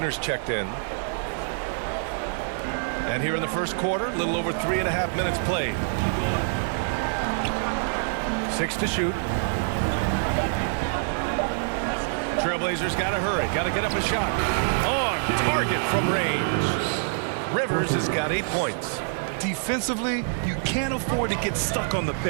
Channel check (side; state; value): left; silent; digital silence